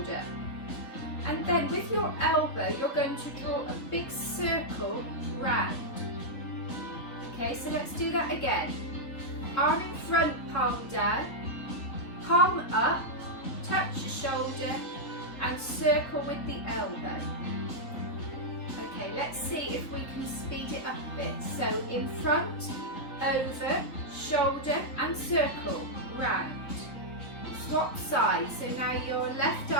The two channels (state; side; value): late; right; 4.0 ms